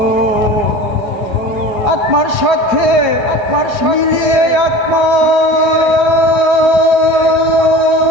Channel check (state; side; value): late; left; 4.9 ms